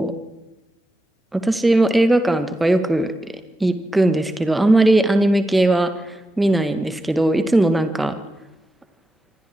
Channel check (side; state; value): both; normal; correlation 0.90